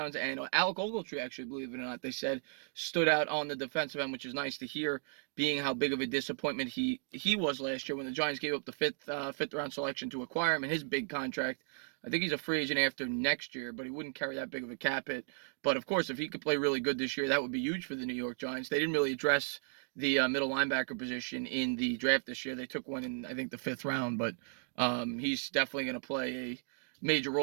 and Alec Ogletree, actually, believe it or not, they said, stood out on the defensive end, which is nice to hear, being how big of a disappointment he was last year when the Giants gave up the fifth round selection to acquire him and his big contract. I think he's a free agent after next year, but he wouldn't carry that big of a cap hit. But of course, if he could play really good this year, that would be huge for the New York Giants. They didn't really address the middle linebacker position in the draft this year. They took one in, I think, the 5th round, but he's definitely going to play a major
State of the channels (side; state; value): left; silent; 54 dB below the other